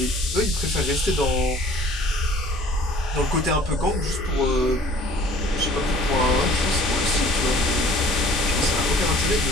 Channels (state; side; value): normal; both; correlation 0.52